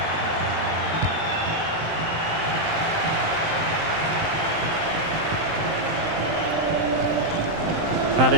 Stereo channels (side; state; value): left; late; 19 ms